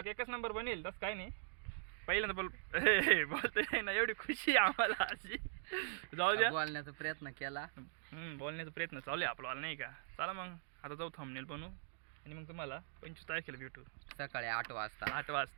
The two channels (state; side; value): silent; left; digital silence